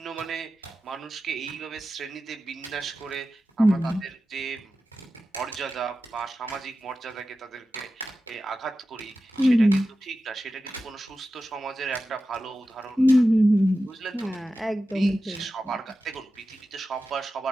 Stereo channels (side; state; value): both; normal; correlation 0.93